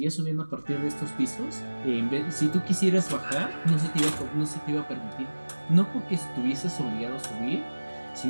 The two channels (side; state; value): both; inverted; correlation -1.00